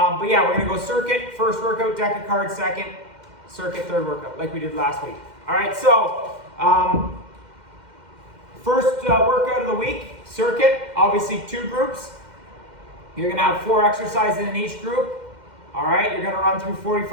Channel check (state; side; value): late; left; 2.1 ms